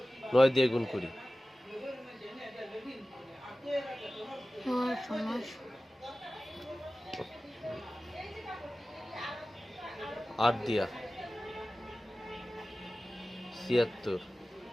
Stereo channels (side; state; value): both; normal; correlation 0.96